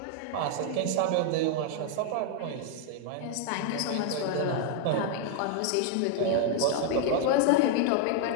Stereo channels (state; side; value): different; both; correlation 0.00